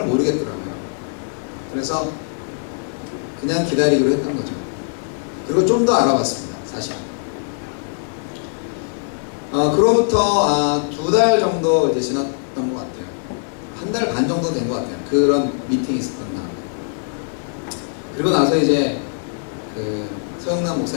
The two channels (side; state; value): right; silent; 65 dB below the other